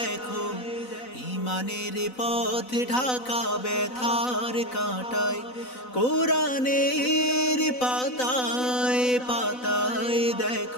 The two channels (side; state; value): right; late; 4.0 ms